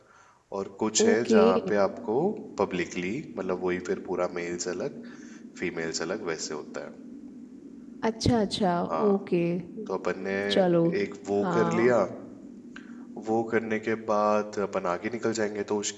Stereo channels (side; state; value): both; identical; correlation 1.00